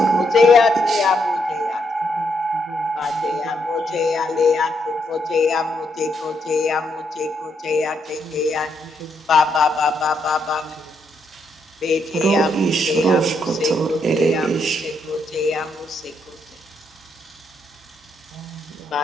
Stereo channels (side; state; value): both; normal; correlation 0.77